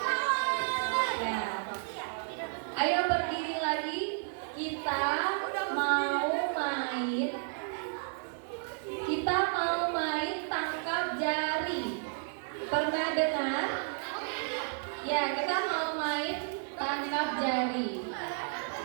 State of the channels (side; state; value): left; silent; digital silence